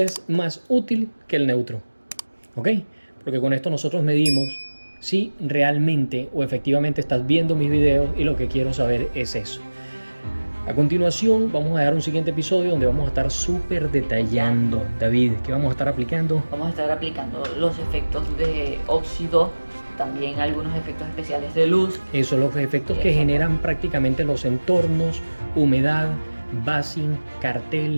más útil que el neutro, ¿ok? Porque con esto nosotros medimos si realmente o efectivamente estás viendo mis videos, y lo que quiero saber es eso. A continuación vamos a dar un siguiente episodio donde vamos a estar súper detallando. David, ¿qué vamos a estar aplicando? Vamos a estar aplicando los efectos de óxido, también algunos efectos especiales de luz. Eso, los efectos que generan prácticamente los entornos, humedad, basing,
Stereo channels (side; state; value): both; inverted; correlation -1.00